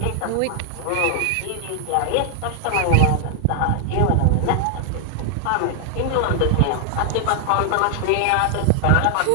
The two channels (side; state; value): both; different; correlation 0.00